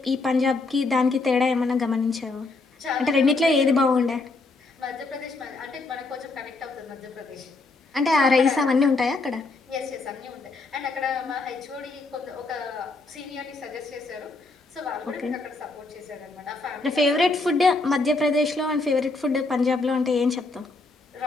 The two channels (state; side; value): quieter; right; 3.5 dB